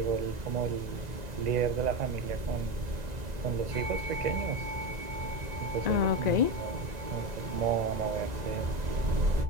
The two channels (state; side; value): late; left; 1.9 ms